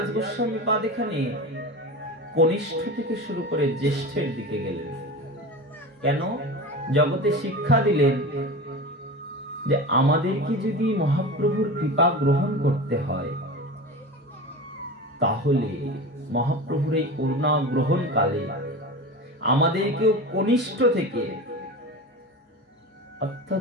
গোস্বামী পাদ এখানে কনিষ্ঠ থেকে শুরু করে জ্যেষ্ঠের দিকে গেলেন। কেন? জগতে শিক্ষা দিলেন যে আমাদেরকে যদি মহাপ্রভুর কৃপা গ্রহণ করতে হয় তাহলে মহাপ্রভুর এই করুণা গ্রহণ কালে আমাদেরকেও কনিষ্ঠ থেকে,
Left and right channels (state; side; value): normal; both; correlation 0.29